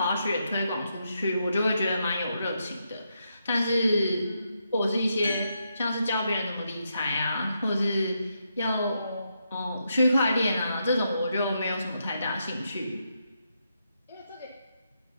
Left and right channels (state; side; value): inverted; both; correlation -0.81